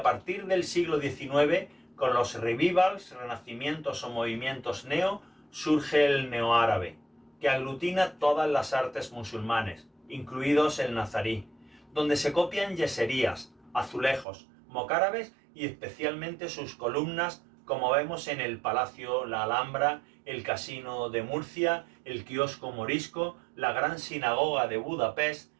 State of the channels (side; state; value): left; drops out; at 14.2 s